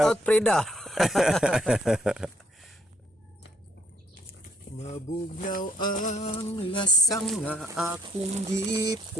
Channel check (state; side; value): normal; both; correlation 0.70